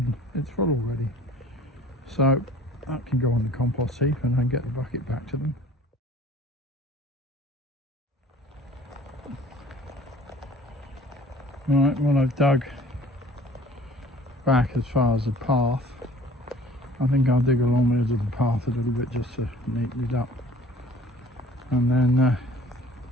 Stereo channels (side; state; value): both; normal; correlation 0.50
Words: it's full already. So that can go on the compost heap and then get the bucket back to them. Right, well I've dug back as far as the path. I think I'll dig along the edge of the path a little bit just to neaten it up, and then